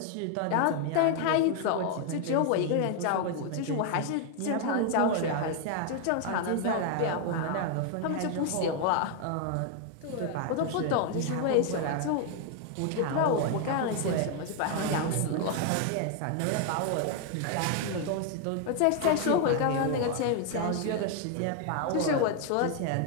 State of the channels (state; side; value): different; both; correlation 0.00